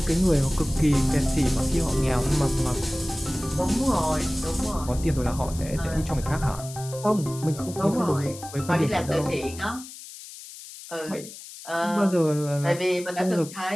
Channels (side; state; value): left; noise; hiss, 15 dB below the sound